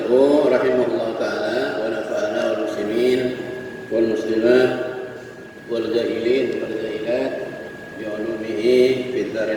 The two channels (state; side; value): identical; both; correlation 1.00